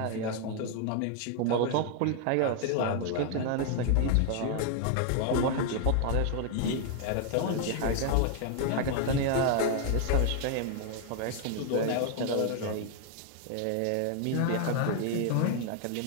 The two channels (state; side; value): different; both; correlation 0.00